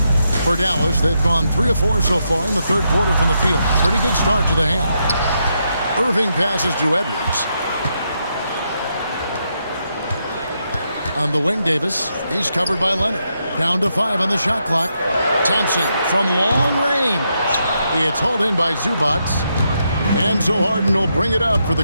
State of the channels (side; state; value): both; inverted; correlation -0.81